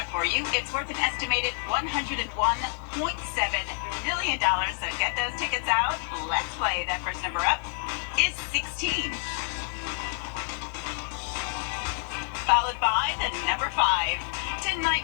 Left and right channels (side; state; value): right; silent; 56 dB below the other